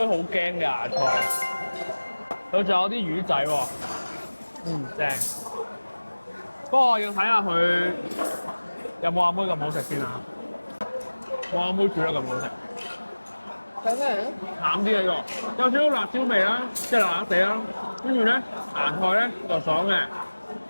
好驚嘅芽菜。佢仲有啲魚仔喎。正。不過要睇下佢有冇阿妹咁好食先啊！冇阿妹煮得咁好食。睇咩嚟？淡啲嘅喎，有少少辣椒味啦，即係辣辣地啦。跟住咧，芽菜咧就爽嘅，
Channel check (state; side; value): inverted; both; correlation -1.00